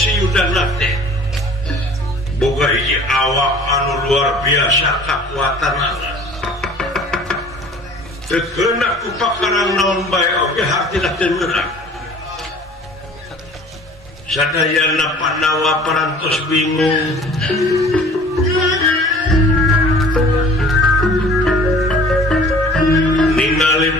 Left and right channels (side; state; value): both; normal; correlation 0.48